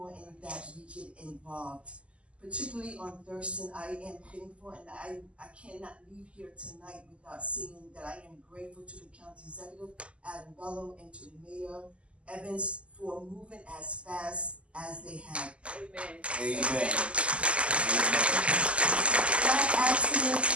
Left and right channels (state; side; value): late; left; 0.056 ms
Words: that we get involved. Particularly on Thurston, I am thankful, and I cannot leave here tonight without saying that I am grateful to the county executive, Adam Bello, and to the mayor, Evans, for moving as fast as they have. Amen. Amen. That accident,